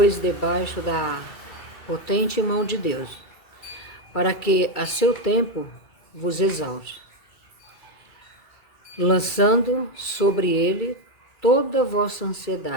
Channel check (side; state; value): right; late; 2.3 ms